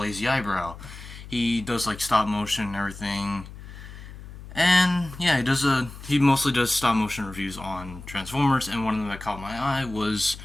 Eyebrow. He does like stop motion and everything. And yeah, he mostly does stop motion reviews on Transformers, and one of them that caught my eye was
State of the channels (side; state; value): left; noise; hum, 14 dB below the sound